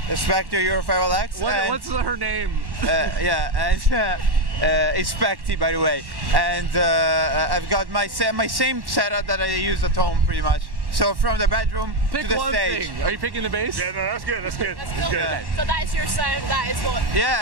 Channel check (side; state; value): left; late; 1.1 ms